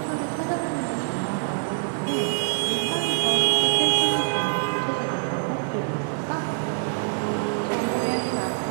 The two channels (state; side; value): silent; left; digital silence